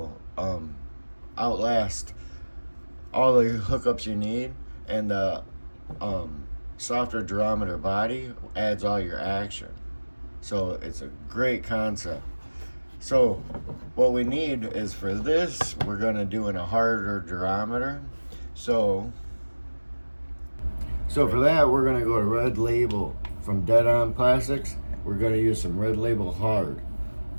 outlast all the hookups you need, and the softer durometer body adds all your action. So it's a great concept. So what we need is, for this, we're going to do in a harder durometer. So for that, we're going to go to Red Label from deadonplastix. We're going to use some Red Label hard.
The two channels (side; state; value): both; inverted; correlation -1.00